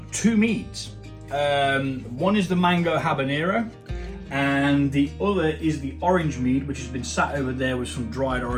two meads. One is the mango habanero and the other is the orange mead, which has been sat over there with some dried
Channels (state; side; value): identical; both; correlation 1.00